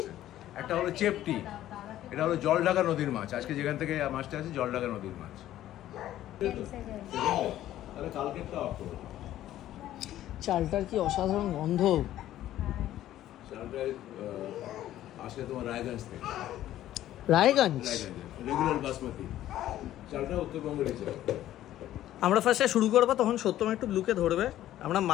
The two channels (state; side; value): quieter; right; 13.2 dB